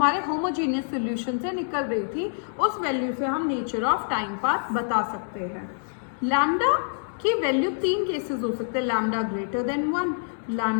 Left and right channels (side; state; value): right; silent; 61 dB below the other